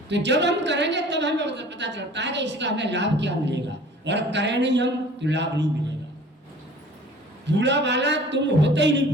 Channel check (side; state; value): both; normal; correlation 0.47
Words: तो जब हम करेंगे तब हमें पता चलता है कि इसका हमें लाभ क्या मिलेगा, और करें नहीं हम तो लाभ नहीं मिलेगा। बूढ़ा वाला तुम होते ही नहीं,